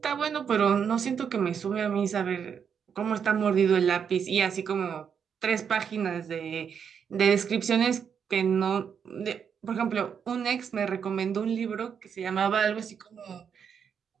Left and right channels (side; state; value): left; quieter; 7.2 dB